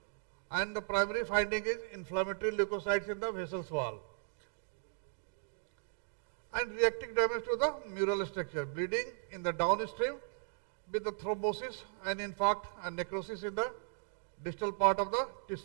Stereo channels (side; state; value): left; silent; digital silence